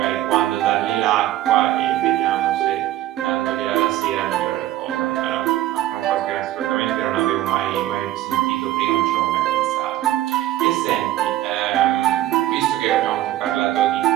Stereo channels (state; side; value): quieter; left; 13.9 dB